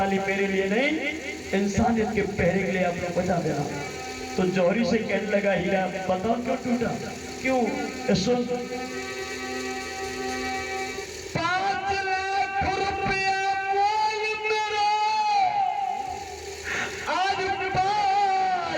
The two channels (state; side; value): identical; both; correlation 1.00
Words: मेरे लिए नहीं, इंसानियत के पहरे के लिए आप लोग बजा देना। तो जौहरी से कहने लगा हीरा बताओ क्यों टूटा? क्यों? सुन 5 लाख रुपया मोल मेरा, आज